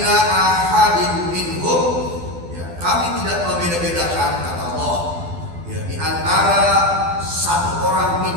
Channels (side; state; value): left; late; 12 ms